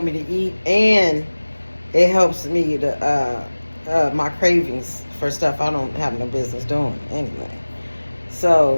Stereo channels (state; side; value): inverted; both; correlation -1.00